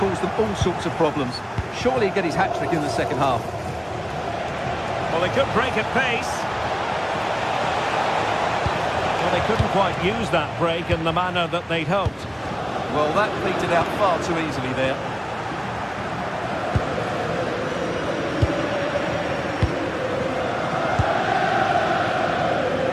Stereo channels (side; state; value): both; identical; correlation 1.00